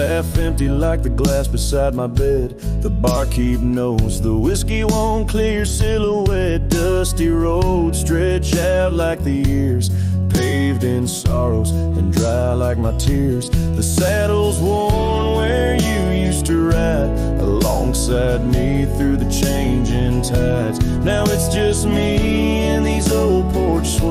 empty like the glass beside my bed. The barkeep knows the whiskey won't clear your silhouette. Dusty roads stretch out like the years, paved in sorrows and dry like my tears. The saddle's worn where you used to ride alongside me through the changing tides. Now it's just me and these old porch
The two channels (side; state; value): both; identical; correlation 1.00